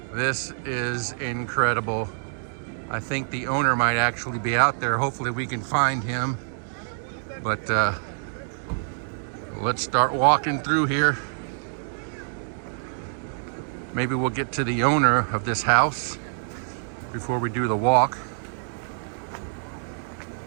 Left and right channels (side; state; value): left; silent; digital silence